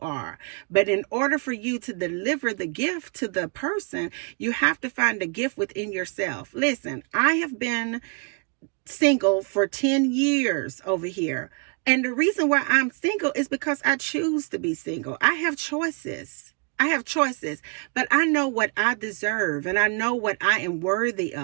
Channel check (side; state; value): left; quieter; 35.4 dB